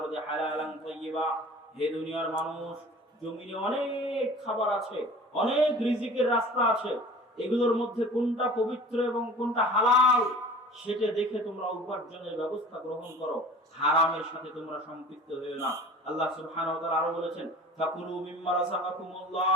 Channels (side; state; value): both; normal; correlation 0.43